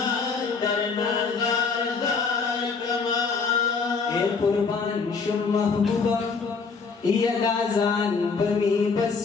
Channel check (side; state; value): right; quieter; 5.0 dB